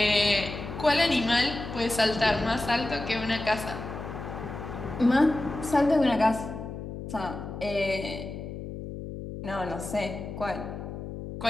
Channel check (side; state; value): left; noise; hum, 8 dB below the sound